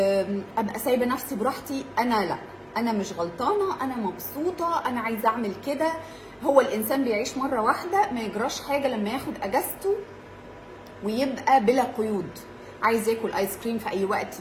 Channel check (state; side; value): identical; both; correlation 1.00